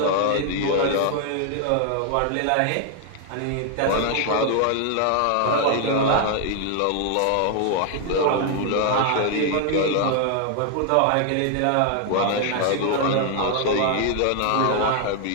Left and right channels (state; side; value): different; both; correlation 0.00